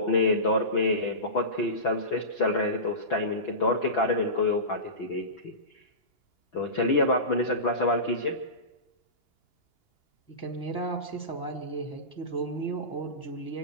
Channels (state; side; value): late; right; 2.9 ms